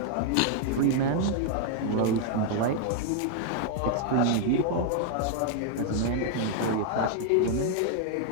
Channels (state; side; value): different; both; correlation 0.00